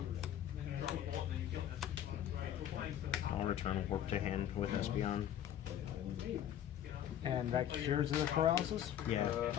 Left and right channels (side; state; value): right; quieter; 10.6 dB